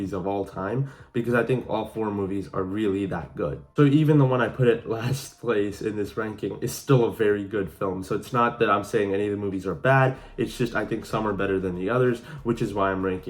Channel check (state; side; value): identical; both; correlation 1.00